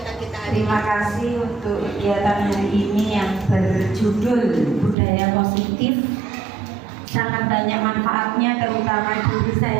kita hari ini. Terima kasih untuk kegiatan hari ini yang berjudul Budaya Positif. Sangat banyak manfaatnya, terutama diri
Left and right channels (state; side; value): drops out; left; at 5.0 s